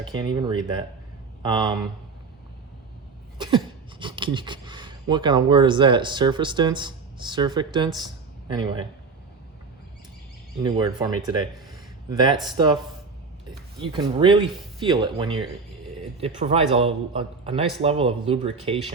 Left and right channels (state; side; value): quieter; left; 4.6 dB